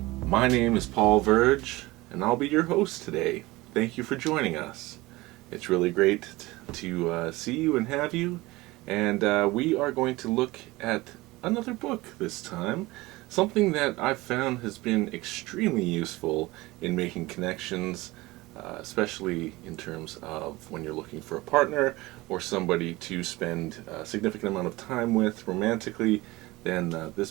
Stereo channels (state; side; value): quieter; left; 20.6 dB